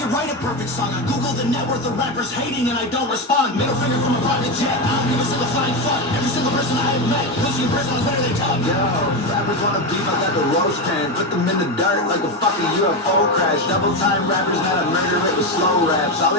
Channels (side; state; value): both; normal; correlation 0.14